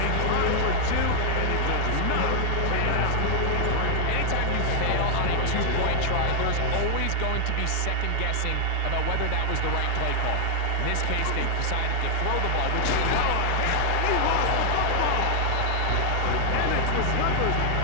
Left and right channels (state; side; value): different; both; correlation 0.00